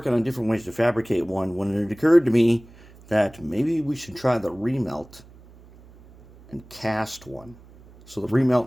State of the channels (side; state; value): right; noise; hum, 23 dB below the sound